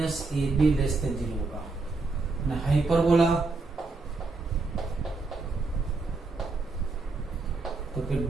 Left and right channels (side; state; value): left; quieter; 3.7 dB